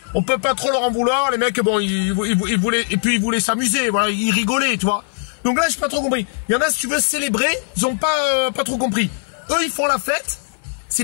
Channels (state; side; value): silent; right; digital silence